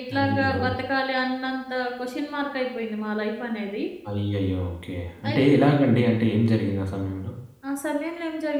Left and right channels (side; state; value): both; identical; correlation 1.00